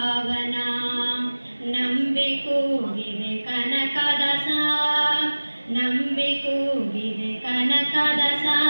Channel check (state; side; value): inverted; both; correlation -1.00